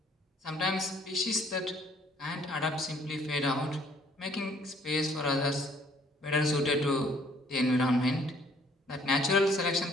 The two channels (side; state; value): both; normal; correlation 0.61